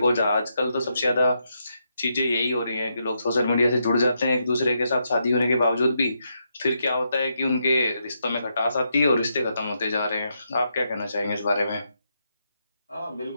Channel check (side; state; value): both; inverted; correlation -0.81